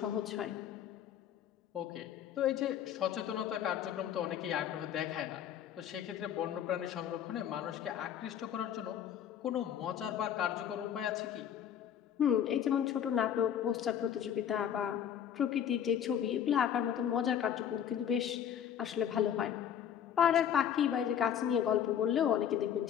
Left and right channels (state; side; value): quieter; right; 9.3 dB